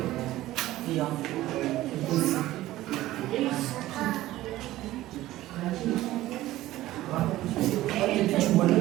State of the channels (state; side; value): quieter; left; 15.8 dB